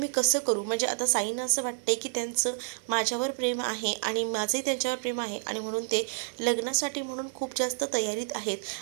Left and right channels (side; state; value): left; silent; 58 dB below the other